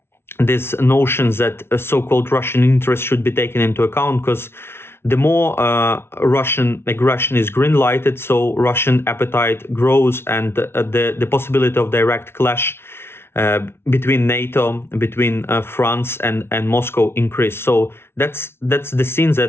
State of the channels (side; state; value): right; late; 0.12 ms